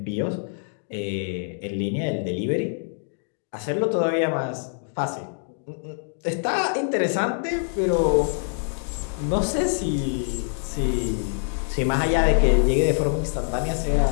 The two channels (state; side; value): silent; right; digital silence